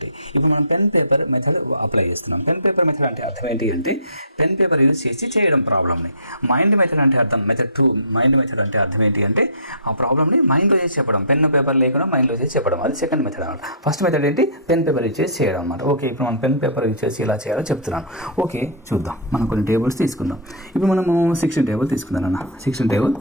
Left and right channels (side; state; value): both; inverted; correlation -0.32